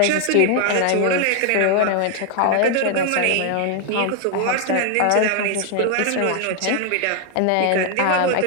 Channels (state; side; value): different; both; correlation 0.00